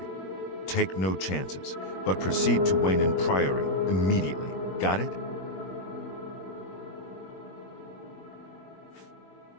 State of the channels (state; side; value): late; right; 21 ms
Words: Take no chances, but proceed to Wayne Priory immediately. Got it?